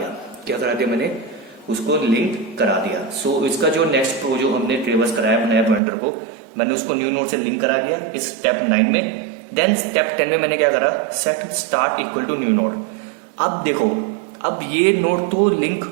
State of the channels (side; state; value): left; drops out; at 5.8 s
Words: क्या करा दिया मैंने, उसको लिंक करा दिया। सो इसका जो नेक्स्ट प्रो जो हमने ट्रेवर्स कराया नया पॉइंटर को, मैंने उसको न्यू नोड से लिंक करा दिया इस स्टेप 9 में। देन स्टेप 10 में मैंने क्या करा, set start equal to new node. अब देखो, अब ये नोड तो लिंक